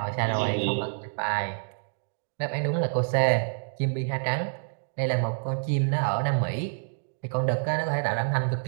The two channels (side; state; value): left; silent; digital silence